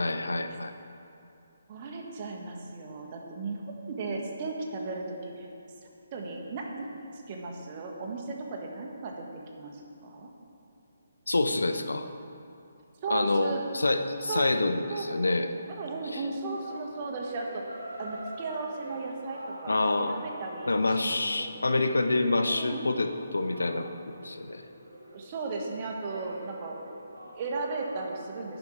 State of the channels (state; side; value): inverted; both; correlation -0.86